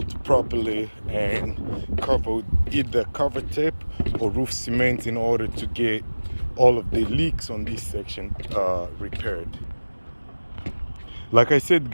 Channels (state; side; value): inverted; both; correlation -1.00